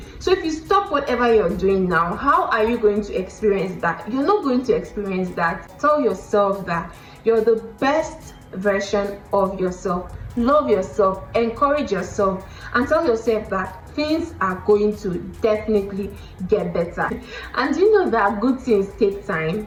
So if you stop whatever you're doing now, how are you going to experience that? You're not going to experience that. Tell yourself that you're the best version of yourself. Love yourself, encourage yourself, and tell yourself that things are going to definitely get better. And you know that good things take time.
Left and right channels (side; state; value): both; identical; correlation 1.00